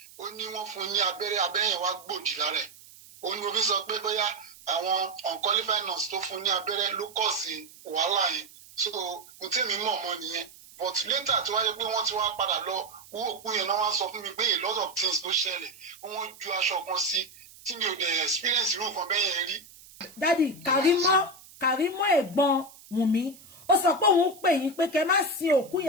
ó ní wọ́n fún ní abẹ́rẹ́ yẹn wá gbòdì lára ẹ̀ ó ní mo fi sọ pé bóyá àwọn unqualified nurse tó fún ní abẹ́rẹ́ ló kọ̀ sí wàhálà yẹn so mo tẹ́mi mọ̀ mọ́ nìyẹn but later tí wáyé pé wọ́n ti wá padà lọ wú òkú yẹn náà wá sọ fún mi pé a lot of things ló ṣẹlẹ̀ wọ́n ju aṣọ kan sí tí mi ò dẹ̀ experience irú nǹkan bẹ́ẹ̀ yẹn rí. Dádì Kàrímọ́ ẹ̀gbọ́n Wùmí ó sọ pé òun pè yín pé kẹ́ má sin òkú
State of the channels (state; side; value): noise; right; hiss, 21 dB below the sound